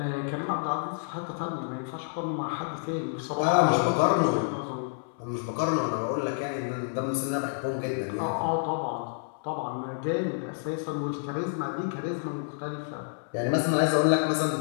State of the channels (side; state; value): right; silent; 59 dB below the other